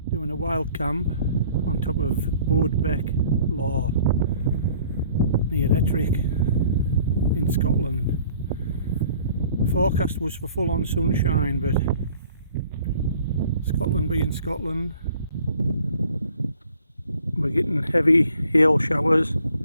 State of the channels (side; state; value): both; inverted; correlation -0.55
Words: Doing a wild camp on top of Bodesbeck Law near Ettrick in Scotland. The forecast was for full on sunshine, but Scotland being Scotland, we're getting heavy hail showers,